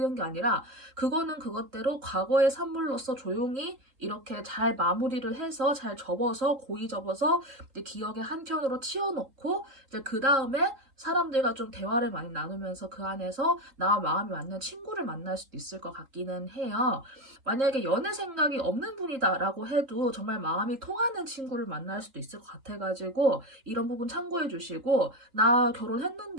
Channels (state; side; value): late; left; 3.7 ms